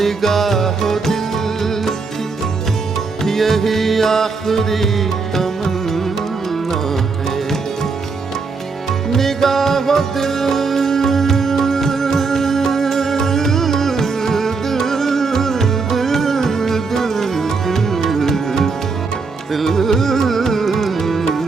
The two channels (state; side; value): quieter; left; 4.5 dB